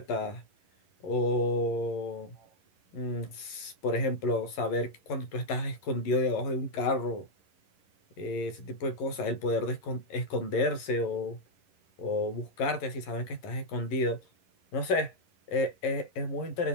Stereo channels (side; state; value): right; late; 11 ms